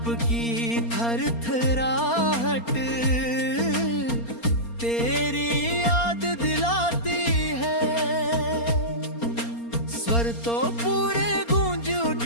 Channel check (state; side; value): late; right; 4.3 ms